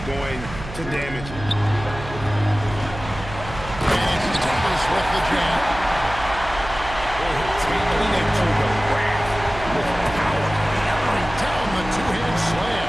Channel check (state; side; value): noise; right; hum, 12 dB below the sound